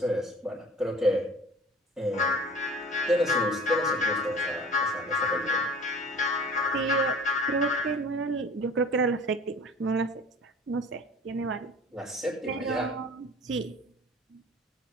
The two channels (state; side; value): normal; both; correlation 0.43